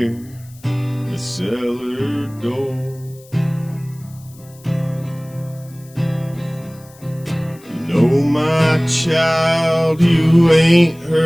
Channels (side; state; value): left; noise; hiss, 25 dB below the sound